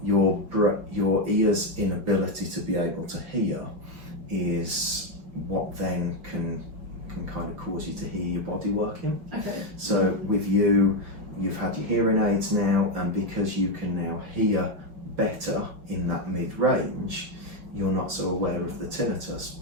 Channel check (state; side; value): late; left; 5.8 ms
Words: your ear's inability to be able to hear is what then can kind of cause you to hear your body working. Okay. So with you've had your hearing aids now, and because you can now hear better in that mid-range, you're not so aware of the tinnitus